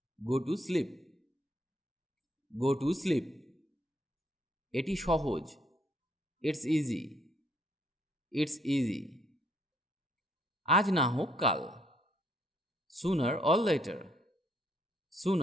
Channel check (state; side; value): normal; both; correlation 0.69